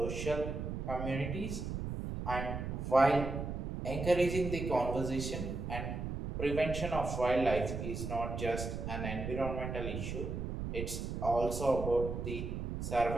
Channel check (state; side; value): noise; right; rumble, 4 dB below the sound